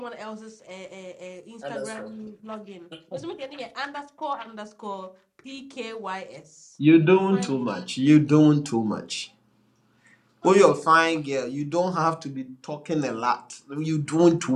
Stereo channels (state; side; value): identical; both; correlation 1.00